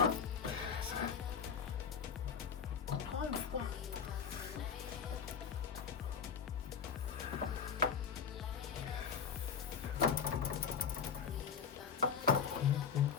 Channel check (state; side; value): quieter; right; 6.8 dB